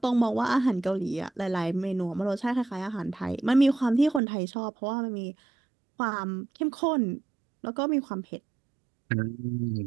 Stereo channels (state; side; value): drops out; left; at 4.2 s